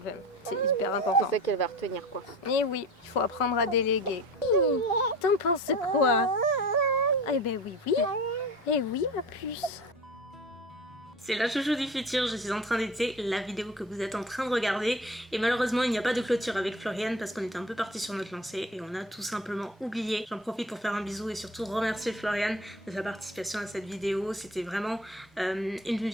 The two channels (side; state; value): both; normal; correlation 0.37